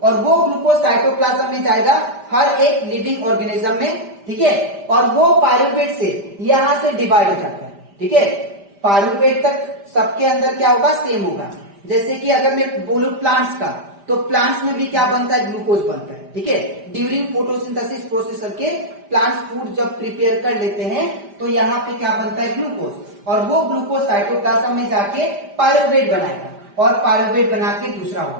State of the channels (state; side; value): late; left; 5.0 ms